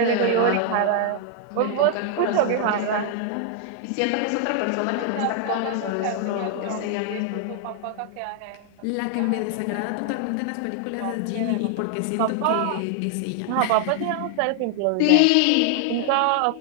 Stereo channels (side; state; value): both; different; correlation 0.00